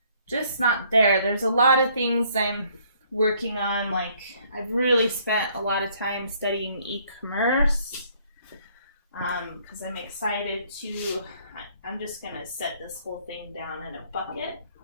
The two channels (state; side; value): inverted; both; correlation -0.63